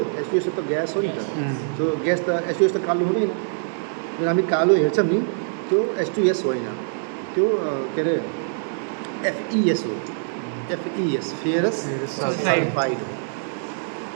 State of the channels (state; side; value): silent; left; 63 dB below the other